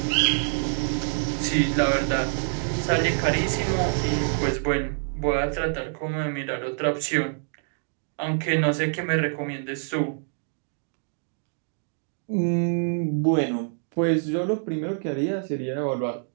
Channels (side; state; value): left; silent; digital silence